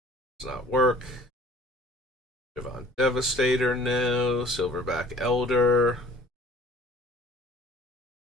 does not work. Javon Devastator, no. Silverback Elder.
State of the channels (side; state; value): both; normal; correlation 0.50